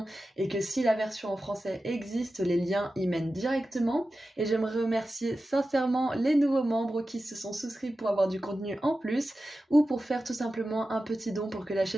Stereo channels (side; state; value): both; normal; correlation 0.93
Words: et que si la version en français existe, les liens y mènent directement. Et j'aimerais remercier sincèrement les nouveaux membres qui se sont souscrits pour avoir du contenu en plus ou pour faire tout simplement un petit don pour que la